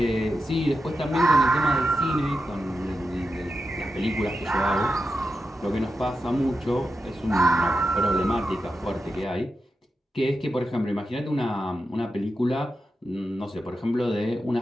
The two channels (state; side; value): normal; both; correlation 0.89